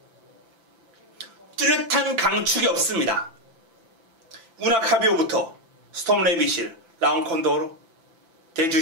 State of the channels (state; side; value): late; left; 5.9 ms